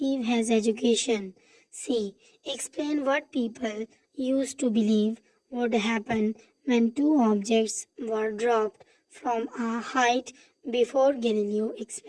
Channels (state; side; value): identical; both; correlation 1.00